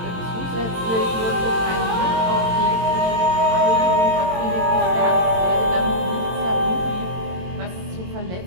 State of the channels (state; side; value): late; left; 22 ms